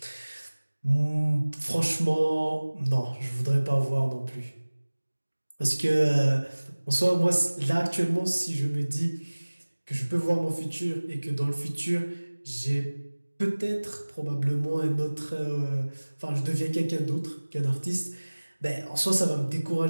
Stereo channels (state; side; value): inverted; both; correlation -1.00